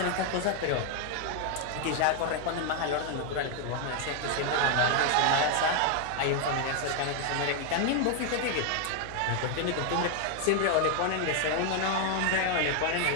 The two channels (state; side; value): different; both; correlation 0.00